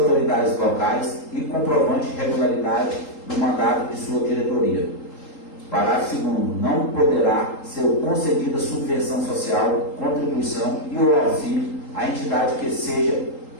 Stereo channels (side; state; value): right; late; 3.8 ms